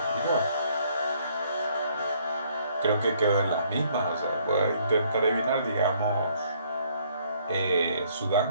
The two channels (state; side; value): inverted; both; correlation -0.65